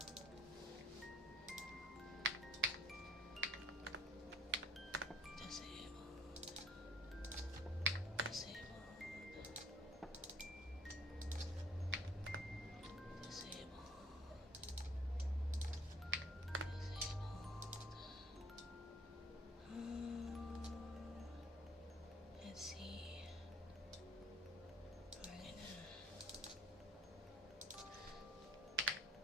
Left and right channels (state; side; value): normal; both; correlation 0.56